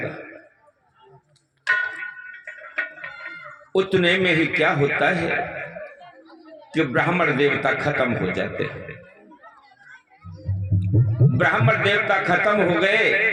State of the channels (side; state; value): both; identical; correlation 1.00